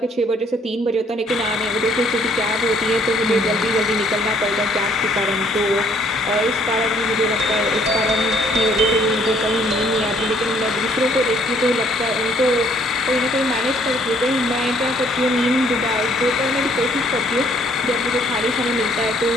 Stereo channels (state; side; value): normal; both; correlation 0.63